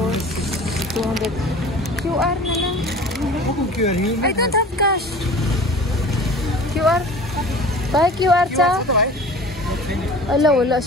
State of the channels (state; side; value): normal; both; correlation 0.41